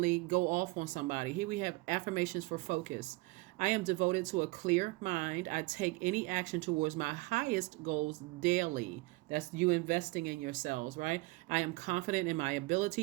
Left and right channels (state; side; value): quieter; left; 23.1 dB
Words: go off on somebody. Here we have affirmations for focus. I am devoted to a clear mind. I take any action towards my highest goals daily. That's you investing in yourselves, right? I am confident in my